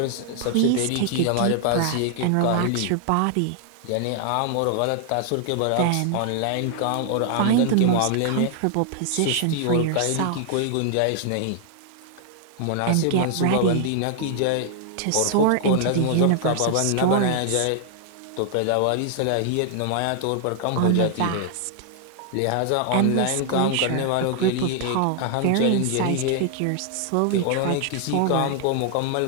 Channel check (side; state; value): both; different; correlation 0.00